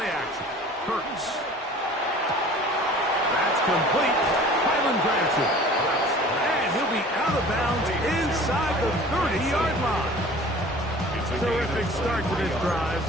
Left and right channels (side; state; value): both; normal; correlation 0.45